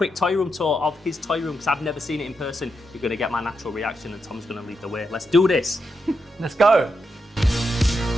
toy room tour of his toy room because I've never seen it in person. You're gonna get my natural reaction, and Tom's gonna lead the way. Let's do this. Let's go.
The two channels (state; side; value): normal; both; correlation 0.84